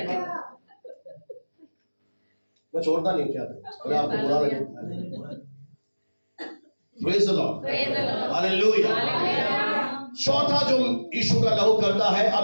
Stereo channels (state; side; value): inverted; both; correlation -1.00